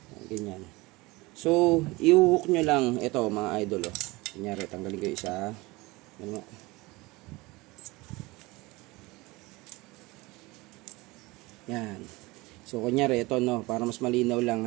Ganyan. So, i-hook nyo lang, ito, mga idol, oh. Kunyari, tanggalin ko isa. Ano? Yan. So, kunyari, ito, no, para mas malinaw lang,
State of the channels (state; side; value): quieter; left; 22.4 dB